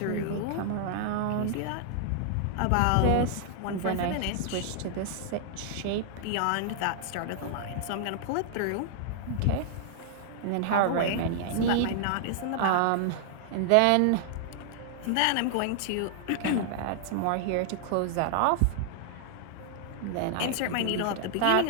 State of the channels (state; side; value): different; both; correlation -0.01